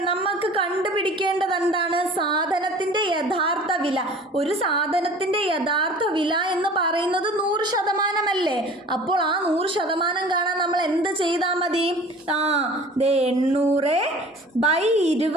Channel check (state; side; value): normal; both; correlation 0.44